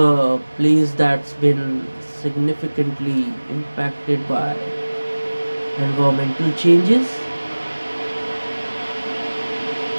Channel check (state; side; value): inverted; both; correlation -1.00